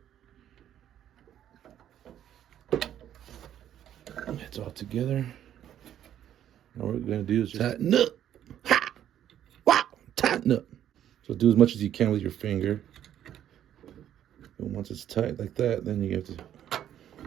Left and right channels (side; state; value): left; quieter; 10.8 dB